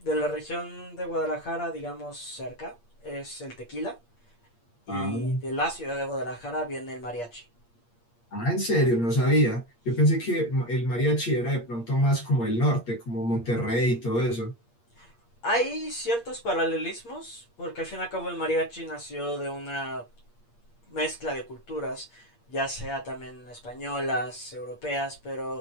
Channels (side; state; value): right; late; 8.5 ms